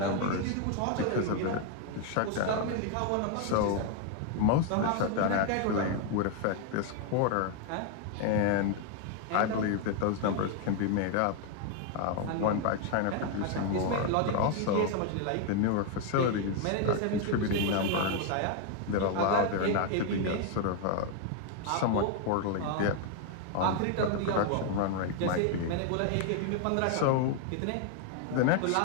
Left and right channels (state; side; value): different; both; correlation 0.01